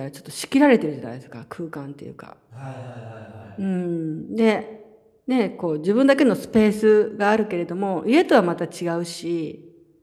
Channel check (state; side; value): identical; both; correlation 1.00